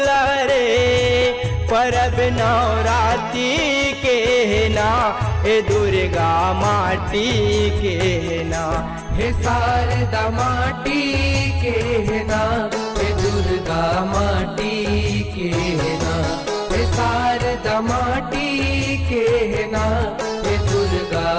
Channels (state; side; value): identical; both; correlation 1.00